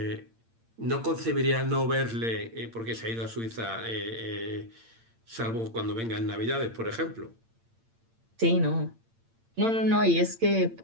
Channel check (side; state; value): left; late; 8.8 ms